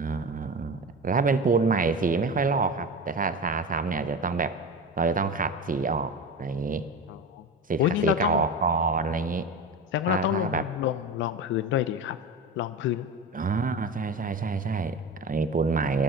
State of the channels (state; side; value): normal; both; correlation 0.26